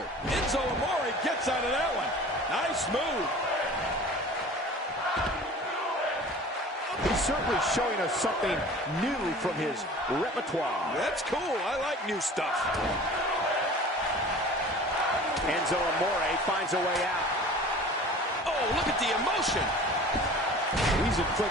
Enzo Amore gets out of that one. Nice move. He's certainly showing us something new from his repertoire. That's cool. I like new stuff. Enzo Amore finds a way out. Oh, look at the emotion. He's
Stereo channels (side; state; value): both; normal; correlation 0.42